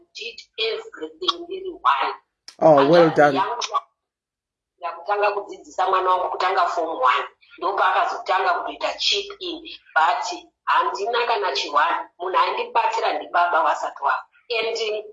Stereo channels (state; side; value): identical; both; correlation 1.00